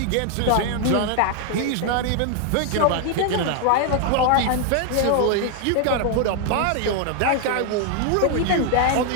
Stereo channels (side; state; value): both; different; correlation 0.00